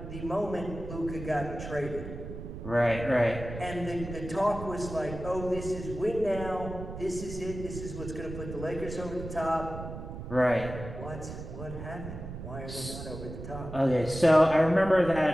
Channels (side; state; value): right; noise; rumble, 9 dB below the sound